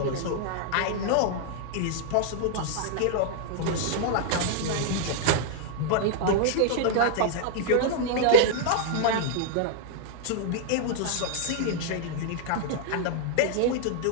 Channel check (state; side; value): different; both; correlation -0.01